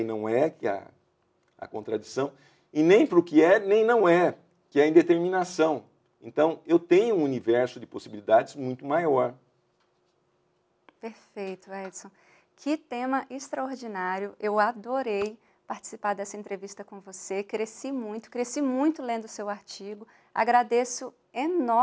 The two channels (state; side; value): identical; both; correlation 1.00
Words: não é, que é a contradição, e nem para o que é, nem não é, que é a indeterminação. Então, eu tenho um universo de possibilidades muito maior. Perfeito, Edson. Que tema extraordinário. Eu adorei participar dessa entrevista com você. Cresci muito lendo o seu artigo. Agradeço